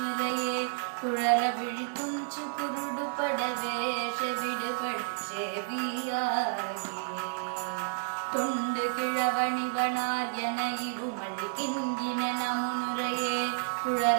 குழற விழித்துஞ்சு குருடுபட வேஷ விடுபட செவியாகி தொண்டு கிழவணிவனார் என இருமல் கிண்கின முன்னுரையே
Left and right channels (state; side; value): silent; left; digital silence